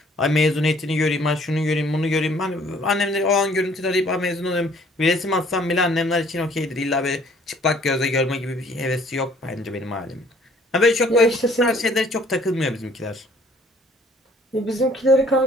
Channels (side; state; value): both; normal; correlation 0.58